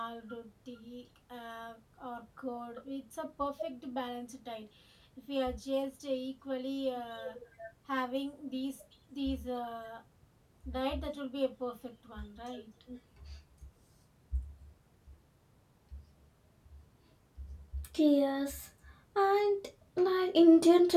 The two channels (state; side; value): identical; both; correlation 1.00